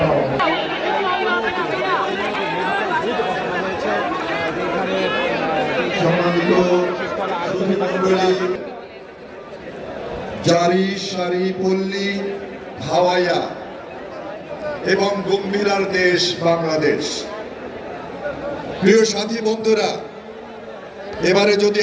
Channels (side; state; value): both; identical; correlation 1.00